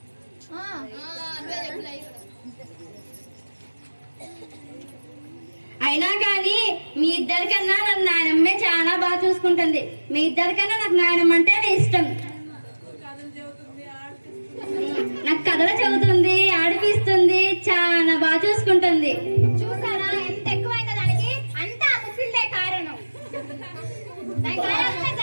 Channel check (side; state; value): both; inverted; correlation -1.00